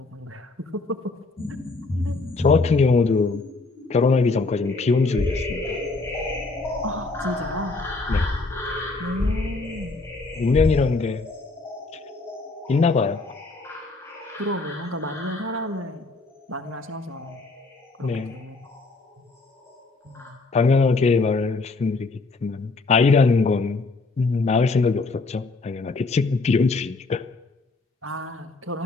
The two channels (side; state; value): right; quieter; 3.6 dB